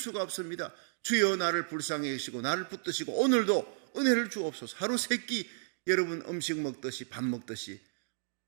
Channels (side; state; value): left; silent; digital silence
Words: 없습니다. 주여 나를 불쌍히 여기시고 나를 붙드시고 오늘도 은혜를 주옵소서. 하루 세끼 여러분 음식 먹듯이 밥 먹듯이